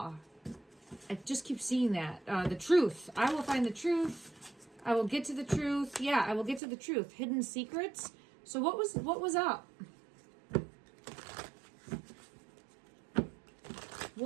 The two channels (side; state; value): left; drops out; at 6.6 s